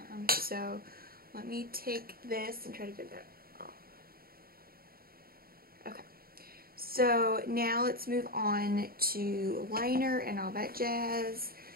So let me take this and try to get that off. Okay. So now let's move on to liner and all that jazz.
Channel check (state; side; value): late; left; 0.43 ms